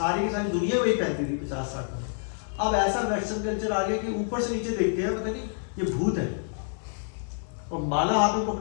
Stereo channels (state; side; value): silent; right; 60 dB below the other